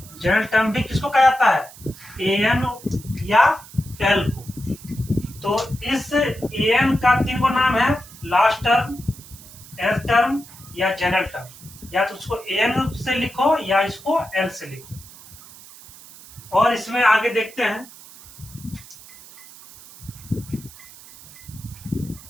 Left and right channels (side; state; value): right; noise; hiss, 19 dB below the sound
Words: general term भी किसको कहा जाता है, an या l को। तो इस an का 3 को नाम है, लास्ट टर्म, nth टर्म या जनरल टर्म। या तो उसको an से लिखो या इसको l से लिखो। और इसमें आगे देखते हैं,